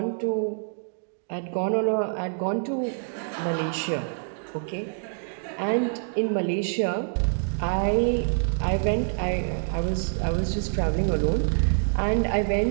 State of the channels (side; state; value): left; silent; digital silence